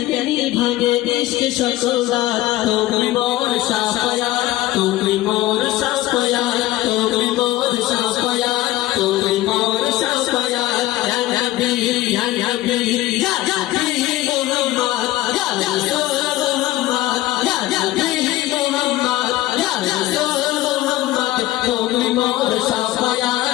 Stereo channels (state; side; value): quieter; right; 16.0 dB